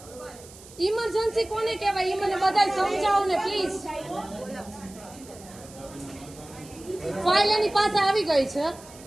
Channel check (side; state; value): right; noise; hiss, 20 dB below the sound